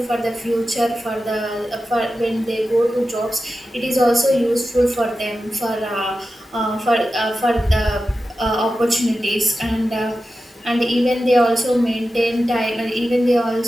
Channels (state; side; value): normal; both; correlation 0.92